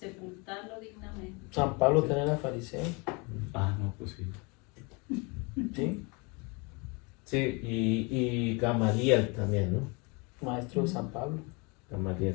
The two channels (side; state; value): right; quieter; 29.8 dB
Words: sepultarlo dignamente. San Pablo tenía la fariseo, Ah, no, pues sí. ¿sí? Sí, y Gamaliel también, ¿no? Maestro de San Pablo.